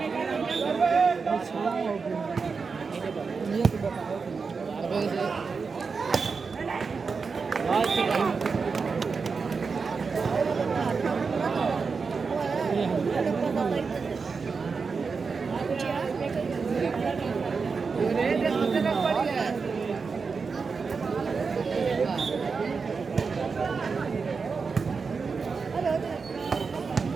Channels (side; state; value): left; quieter; 5.0 dB